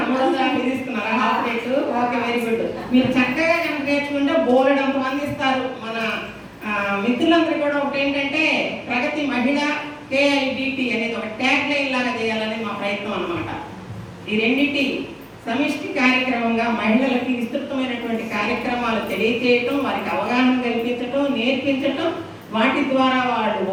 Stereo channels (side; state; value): both; identical; correlation 1.00